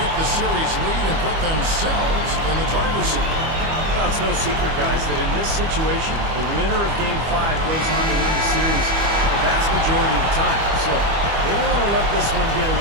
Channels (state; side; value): late; left; 25 ms